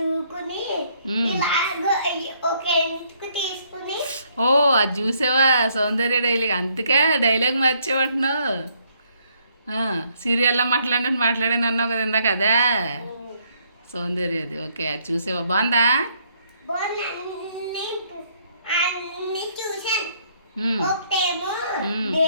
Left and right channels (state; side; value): inverted; both; correlation -0.69